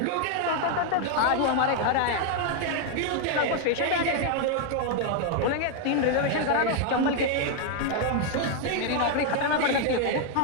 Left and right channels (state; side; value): different; both; correlation 0.00